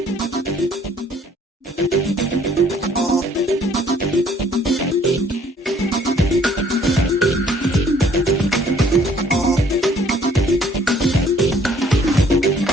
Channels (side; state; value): both; normal; correlation 0.60